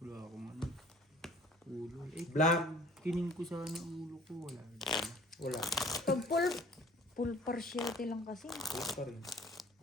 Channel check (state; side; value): normal; both; correlation 0.50